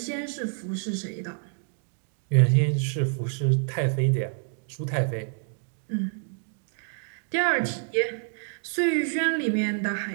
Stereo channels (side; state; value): left; silent; 60 dB below the other